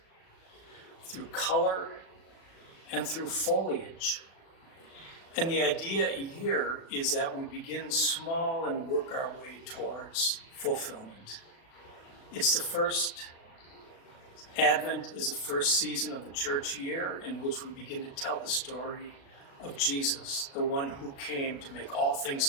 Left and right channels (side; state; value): right; late; 37 ms